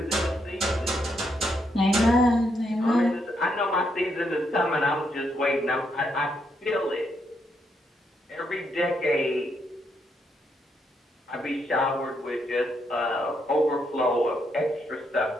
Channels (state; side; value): normal; both; correlation 0.77